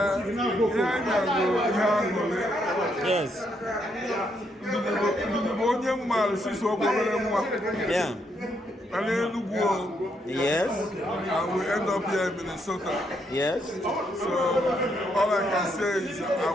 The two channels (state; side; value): normal; both; correlation 0.76